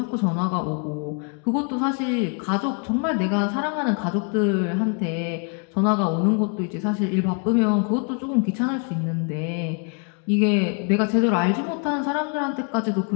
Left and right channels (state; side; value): quieter; right; 38.8 dB